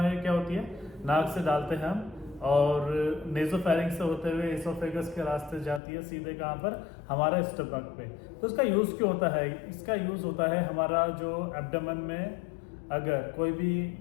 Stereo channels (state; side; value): drops out; right; at 5.8 s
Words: क्या होती है, नाक से डालते हैं हम और नेजोफेरिंक्स से होते हुए एसोफेगस के रास्ते जाती है सीधे कहाँ पर, हमारा स्टमक पे। तो इसका यूज़ क्यों होता है? इसका यूज़ होता है हमारा जो एब्डोमेन में अगर कोई भी